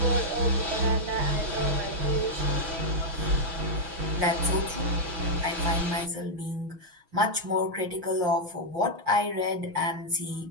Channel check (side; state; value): left; late; 6.1 ms